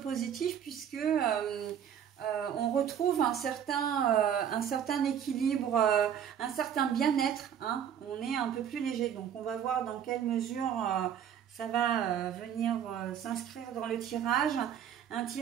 puisque on retrouve un certain équilibre, un certain bien-être, hein. On est un peu plus léger, donc on va voir dans quelle mesure ça va venir s'inscrire dans le tirage. Un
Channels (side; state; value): left; quieter; 8.9 dB